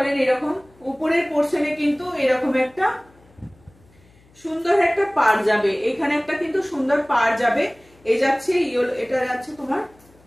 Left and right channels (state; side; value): noise; left; hum, 30 dB below the sound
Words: এরকম উপরের পোর্শনে কিন্তু এরকম একটা সুন্দর একটা পাড় যাবে, এখানে একটা কিন্তু সুন্দর পাড় যাবে। এই যাচ্ছে ইয়েলো, এটা যাচ্ছে তোমার